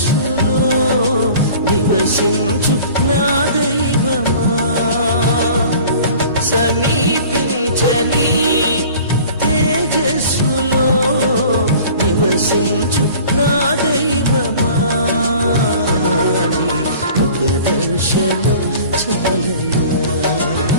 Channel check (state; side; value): inverted; both; correlation -0.46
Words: నివసించు నా దైవమా సమీపించని తేజస్సులో నివసించు నా దైవమా ముఖ దర్శనం చాలయా